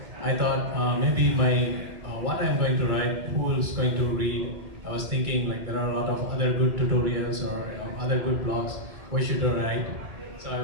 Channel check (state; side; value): late; left; 2.3 ms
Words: I thought maybe what I'm going to write, who is going to read. I was thinking like there are a lot of other good tutorials or other good blogs. Why should I write? So I